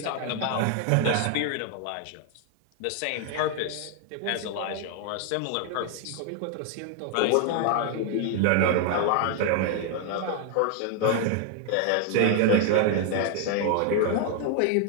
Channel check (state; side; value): different; both; correlation 0.00